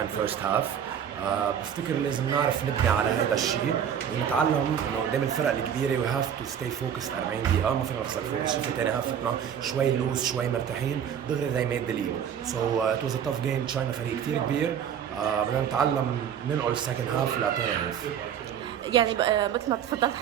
first half. بفتكر لازم نعرف نبني على هذا الشيء ونتعلم انه قدام الفرق الكبيره we have to stay focused 40 دقيقه. ما فينا نخسر فوكس. شفنا ثاني هافتنا شوي لوز شوي مرتاحين دغري they made the lead. So it was a tough game. تشاينا فريق كثير كبير. بدنا نتعلم ننقل السكند هاف لثاني هاف. يعني مثل ما تفضلت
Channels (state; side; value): quieter; left; 8.7 dB